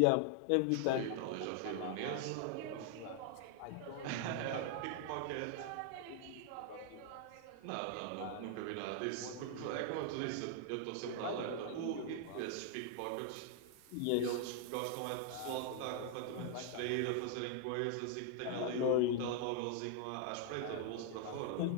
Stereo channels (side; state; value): both; different; correlation 0.00